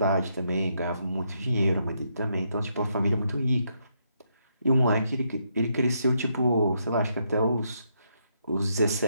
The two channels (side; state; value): both; inverted; correlation -0.77